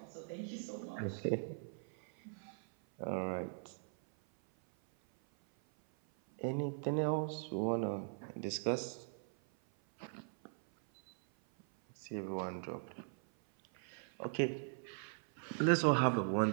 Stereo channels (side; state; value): left; silent; 51 dB below the other